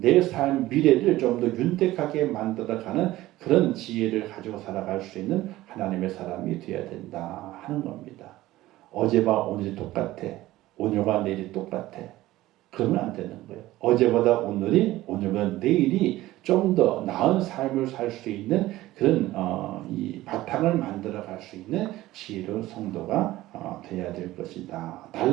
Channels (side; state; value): left; quieter; 16.5 dB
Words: 삶 미래를 좀 더 윤택하게 만들어가는 그런 지혜를 가지고 살아갈 수 있는 하나님의 사람이 되어야 된다 하는 겁니다. 어제와 오늘이 똑같아. 오늘과 내일이 똑같아. 그러면 안 되는 거예요. 어제보다 오늘보다 내일이 좀 더 나은 삶을 살 수 있는 그런 이 바탕을 만들어 갈 수 있는 지혜로운 성도가 되어야 될 것이다.